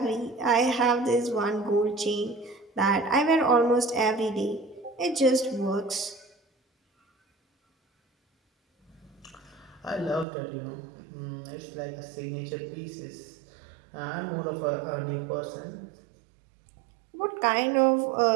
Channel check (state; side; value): drops out; left; at 10.2 s